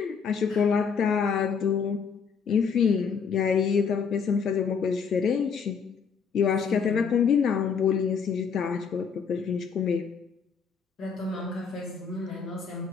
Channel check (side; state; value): right; quieter; 6.1 dB